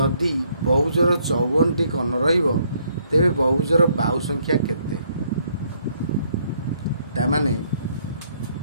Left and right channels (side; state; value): both; inverted; correlation -0.69